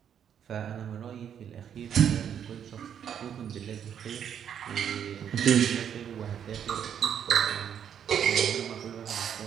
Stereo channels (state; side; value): quieter; left; 8.7 dB